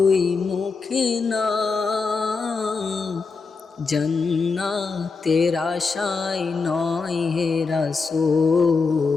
মুখে না। জান্নাতের আশায় নয় হে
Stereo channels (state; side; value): quieter; right; 4.5 dB